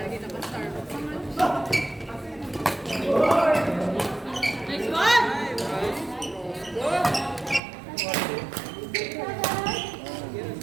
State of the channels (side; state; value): left; drops out; at 7.6 s